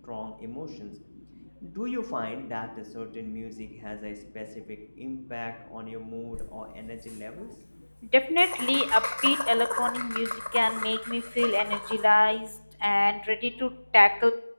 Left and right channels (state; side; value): inverted; both; correlation -1.00